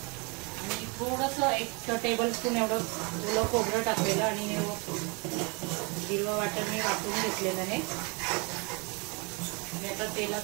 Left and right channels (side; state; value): left; quieter; 31.1 dB